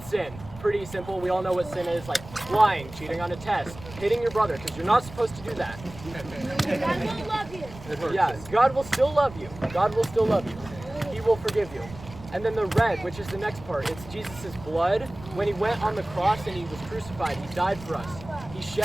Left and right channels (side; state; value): right; noise; rumble, 16 dB below the sound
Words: sin. Pretty simple. We all know what sin is, like lying, cheating on a test, hitting your brother, because you're not supposed to do that. God will love you. Yeah, God will still love you. God will still love you. He will forgive you. And then the red, which is the next part, it's Jesus' blood. When he went on the cross and he was crucified, he died for us. He